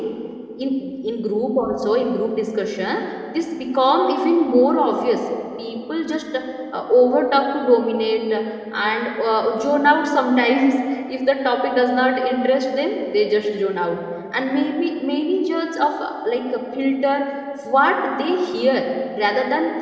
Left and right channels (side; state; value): both; identical; correlation 1.00